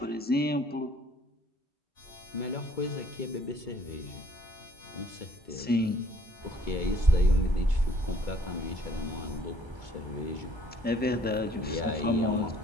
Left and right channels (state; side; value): normal; both; correlation 0.60